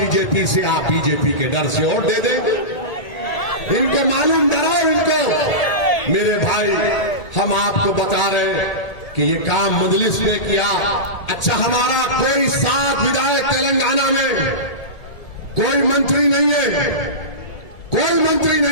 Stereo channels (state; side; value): late; right; 1.7 ms